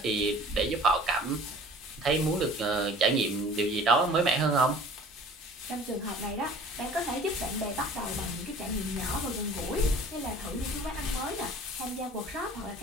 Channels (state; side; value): normal; both; correlation 0.47